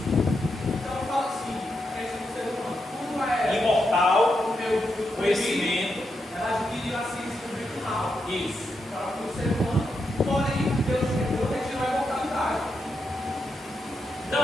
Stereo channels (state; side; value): normal; both; correlation 0.84